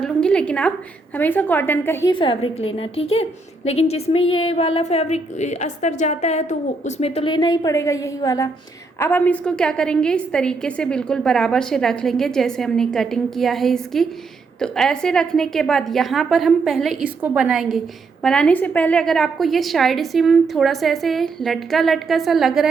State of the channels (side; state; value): left; quieter; 3.9 dB